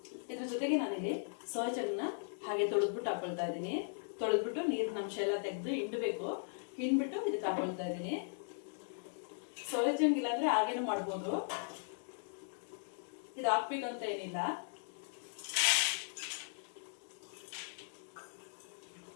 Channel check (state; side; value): silent; right; digital silence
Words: ಇದ್ರ ಜೊತೆಗೆ ನಾನಿಲ್ಲಿ ಸೋಯಾ ಚಂಕ್ನ ಹಾಗೆ ತೊಳೆದ್ಬಿಟ್ಟು ಹಾಕೊಳ್ತಾ ಇದ್ದೀನಿ. ತೊಳೆದ್ಬಿಟ್ಟು ನೀರಿನ ಅಂಶ ಎಲ್ಲ ತೆಗೆದು ಹಿಂಡಬೇಕು. ಹಿಂಡ್ಬಿಟ್ಟು ಇದಕ್ಕೆ ಹಾಕೊಳ್ತಾ ಇದ್ದೀನಿ. ಸೋಯಾ ಚಂಕ್ ಇಲ್ಲಾಂದ್ರೆ ಹಾಗೇನು ಮಾಡ್ಬೋದು, ಇದು ಹಾಕ್ಬೇಕಂತ ಏನಿಲ್ಲ.